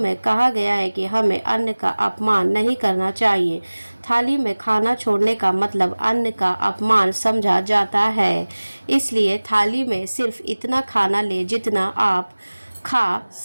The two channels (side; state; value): both; inverted; correlation -1.00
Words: कहा गया है कि हमें अन्न का अपमान नहीं करना चाहिए। थाली में खाना छोड़ने का मतलब अन्न का अपमान समझा जाता है। इसलिए थाली में सिर्फ इतना खाना ले जितना आप खा